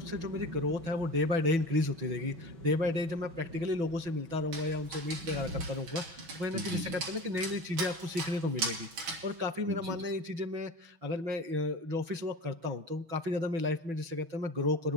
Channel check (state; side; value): late; left; 6.0 ms